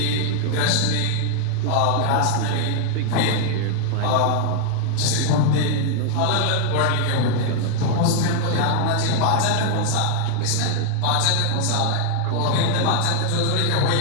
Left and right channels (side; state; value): both; different; correlation 0.00